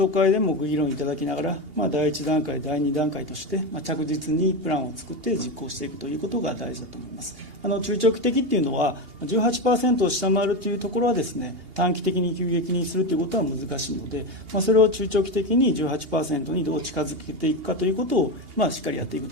討会でもご議論いただきながら、第1段階、第2段階として、着実にプランを作って実行していくということが大事だと思います。中長期的っていうのは 18% を下回るというところはですね、短期的に急激にするということは難しいので、それを中長期的に 18% にどう近づけていくかということを、しっかりやっていく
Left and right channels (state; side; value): late; left; 2.8 ms